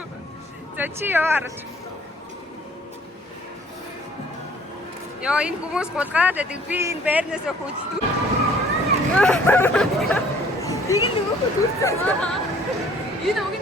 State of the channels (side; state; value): both; normal; correlation 0.56